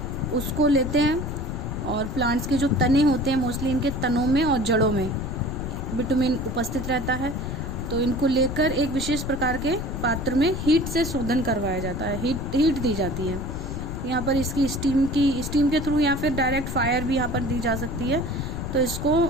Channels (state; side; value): noise; left; rumble, 5 dB below the sound